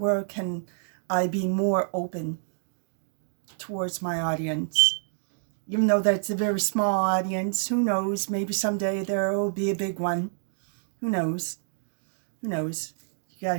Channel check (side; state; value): left; silent; digital silence